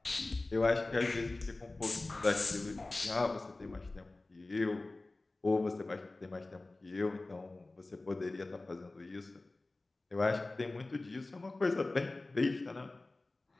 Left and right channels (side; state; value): right; quieter; 3.1 dB